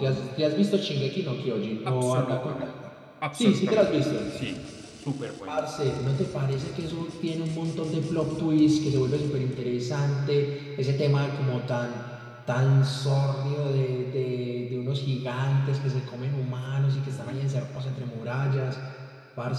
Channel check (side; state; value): both; identical; correlation 1.00